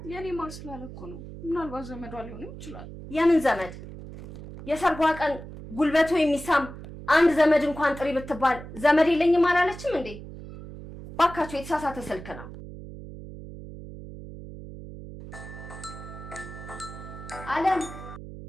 የኔ ማር ስላለኮ ነው ምናልባት ዘመዷ ሊሆንም ይችላል የምን ዘመድ የሰርጓ ቀን ጉልበቱ የሚሳም አንድ ዘመድ እንኳን ጥሪ ብትባል ዘመድ የለኝም አላለችም እንዴ ባካችሁ የተሳሳተ ስልክ ነው አለም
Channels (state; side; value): noise; right; hum, 13 dB below the sound